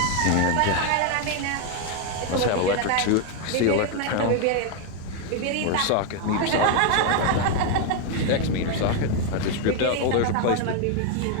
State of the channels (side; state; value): both; different; correlation 0.01